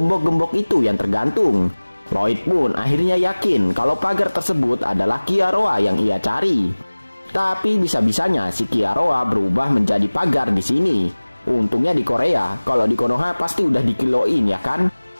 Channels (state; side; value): inverted; both; correlation -1.00